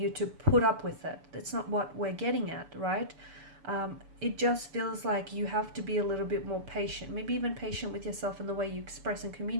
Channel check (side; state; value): left; late; 6.9 ms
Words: to put up with it. That's not what we're getting at, right? It just feels like you have to be a little bit more patient, maybe even patient with yourself in the way you express and